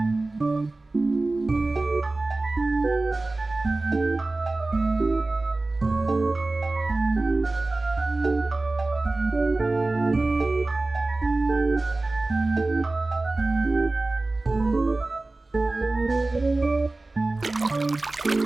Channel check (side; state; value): left; quieter; 3.1 dB